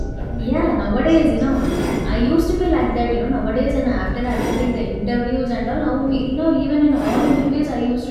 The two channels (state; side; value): identical; both; correlation 1.00